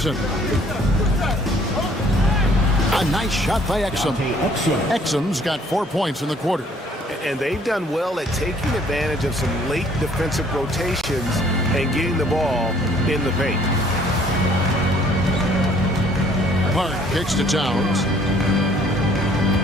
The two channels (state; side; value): normal; both; correlation 0.59